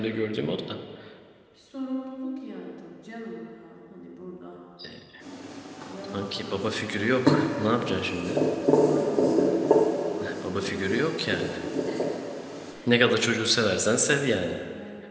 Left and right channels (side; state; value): both; identical; correlation 1.00